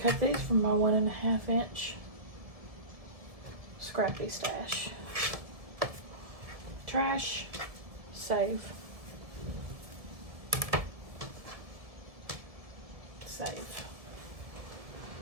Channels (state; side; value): late; left; 1.7 ms